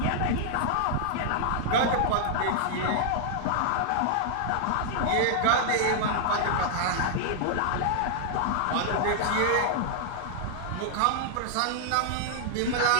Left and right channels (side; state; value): both; different; correlation -0.01